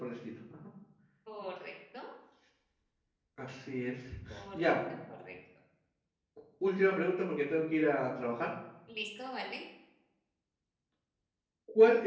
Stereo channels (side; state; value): both; identical; correlation 1.00